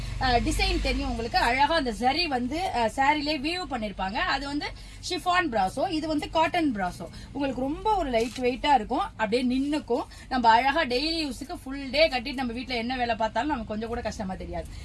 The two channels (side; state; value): both; identical; correlation 1.00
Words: டிசைன் தெரியும். உங்களுக்கு அழகா அந்த சரி வந்து சாரிலே வியூ பண்ணிருப்பாங்க. அது வந்து ஷிஃபான் பிராசோ, இது வந்து காட்டன் பிராசோ. உங்களுக்கு ரொம்ப ஒரு லைட் வெயிட்டா இருக்கும், அப்படியே நின்னுக்கும். நம்ம அழகா டெய்லி யூஸுக்கு ஃபுல் டே கட்டிட்டு நம்ம வீட்டுல என்ன வேலை பார்த்தாலும் நமக்கு கொஞ்சம் கூட கஷ்டமா தெரியாது.